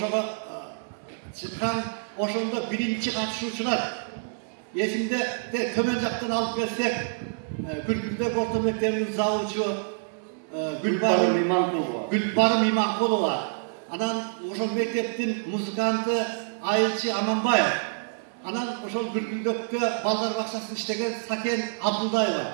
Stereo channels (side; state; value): left; silent; digital silence